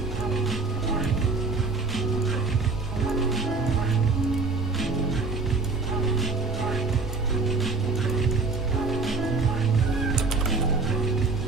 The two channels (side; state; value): left; quieter; 4.0 dB